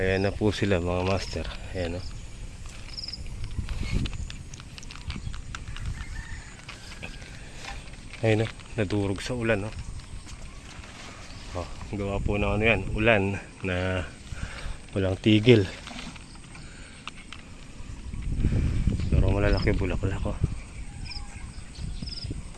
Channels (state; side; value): identical; both; correlation 1.00